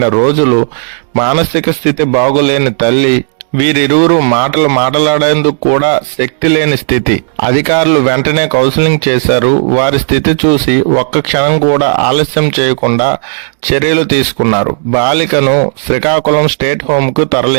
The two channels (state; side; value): silent; left; digital silence